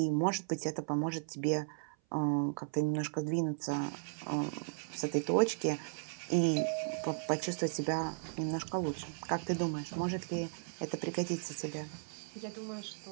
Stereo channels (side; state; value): left; silent; 54 dB below the other